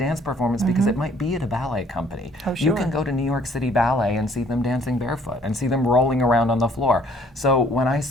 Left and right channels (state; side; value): normal; both; correlation 0.60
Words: performance because it might be at a ballet company. Oh, sure. You can go to New York City Ballet and see them dancing barefoot and see them rolling around on the floor. So when I